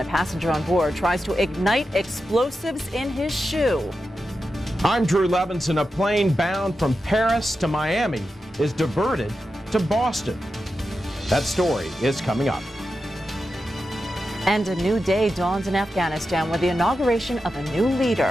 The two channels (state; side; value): normal; both; correlation 0.90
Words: a passenger on board tries to ignite explosives in his shoe. I'm Drew Levinson. A plane bound from Paris to Miami is diverted to Boston. That story is coming up. And a new day dawns in Afghanistan with the inauguration of a new